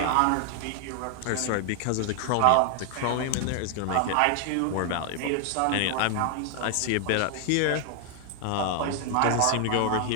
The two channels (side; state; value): both; different; correlation 0.00